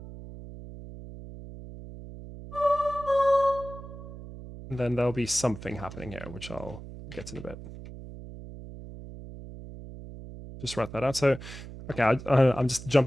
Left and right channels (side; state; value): right; noise; hum, 13 dB below the sound